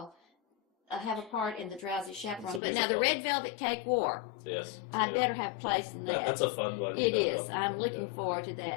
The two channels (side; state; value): right; drops out; at 2.6 s